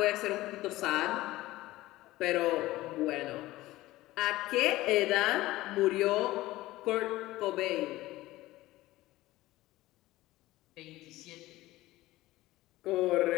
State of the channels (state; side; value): quieter; right; 17.5 dB